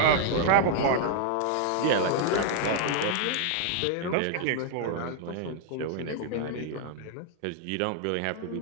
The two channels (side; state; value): both; different; correlation -0.01